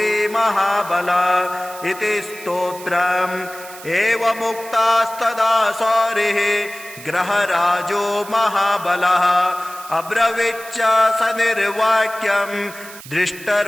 महाबल इति स्तोत्रम्। एवमुक्तास्तदा सौरिः ग्रहराजो महाबलः अब्रवीच्च सनिर्वाक्यं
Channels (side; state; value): right; noise; hiss, 16 dB below the sound